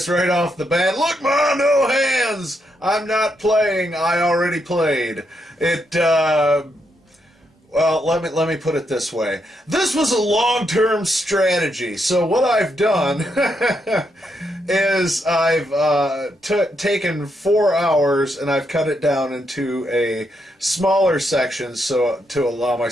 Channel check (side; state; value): both; normal; correlation 0.79